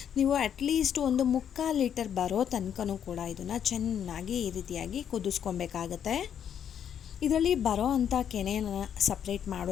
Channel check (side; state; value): right; quieter; 8.9 dB